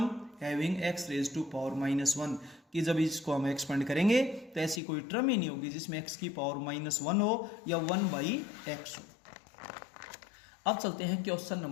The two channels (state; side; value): drops out; right; at 4.8 s